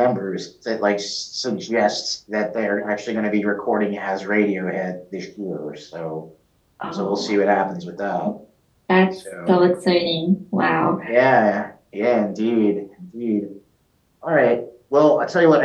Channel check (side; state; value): both; identical; correlation 1.00